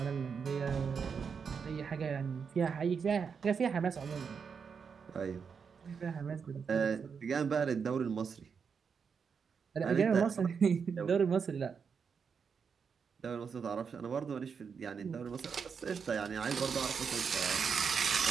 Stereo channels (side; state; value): left; quieter; 6.2 dB